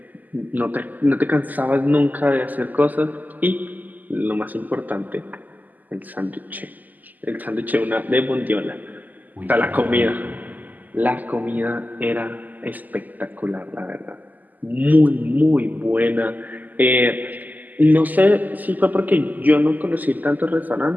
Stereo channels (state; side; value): late; left; 0.082 ms